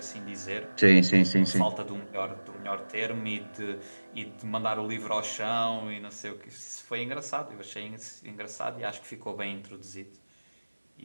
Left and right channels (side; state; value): both; inverted; correlation -1.00